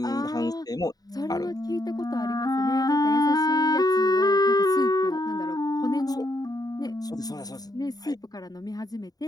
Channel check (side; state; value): right; late; 0.18 ms